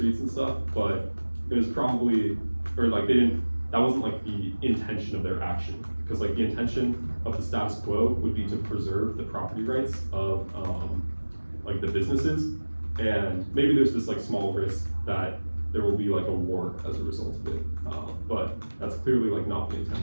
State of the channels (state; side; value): inverted; both; correlation -1.00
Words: and stuff, but it was probably, or like they didn't, that wasn't like the intention of their action. Because like the intention of the status quo would be to preserve the property rights of like the businesses, and maybe there's this like small risk that there will be like a war as a result of it, but that's clearly like not the